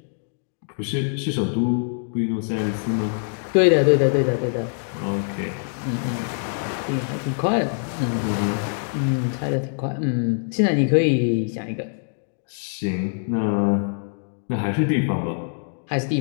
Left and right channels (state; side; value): silent; right; digital silence